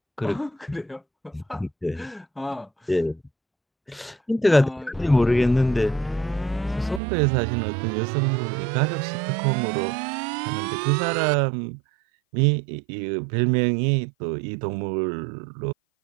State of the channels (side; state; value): left; drops out; at 7.0 s